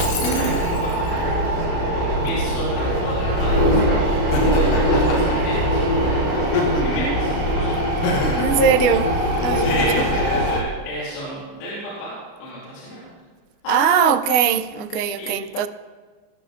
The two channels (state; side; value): late; right; 29 ms